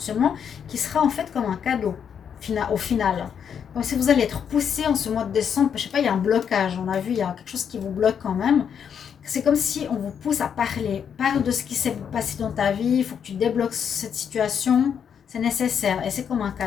qui sera en fait comme un cadeau. Au final, donc si vous allez être poussé en ce mois de décembre, je sais pas, il y a un blocage, on a vu, il y a quelque chose qui vous bloque quand même. C'est comme si on vous pousse à parle de ce qui s'est passé dans ta vie, il faut que tu débloques cette situation, c'est nécessaire et c'est comme un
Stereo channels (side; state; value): right; quieter; 7.8 dB